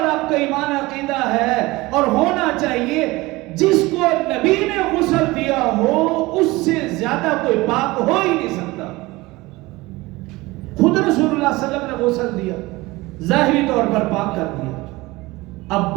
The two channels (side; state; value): left; quieter; 21.1 dB